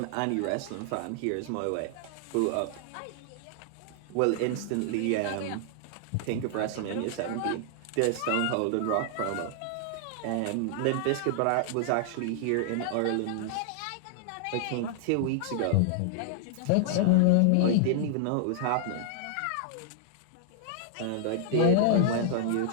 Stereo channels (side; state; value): both; different; correlation -0.01